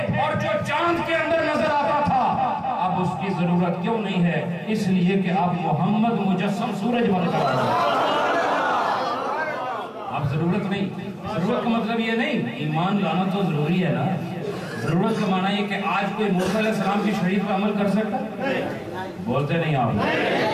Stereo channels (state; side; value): identical; both; correlation 1.00